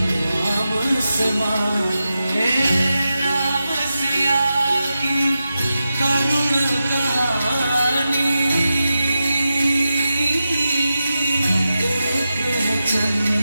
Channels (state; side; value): inverted; both; correlation -0.90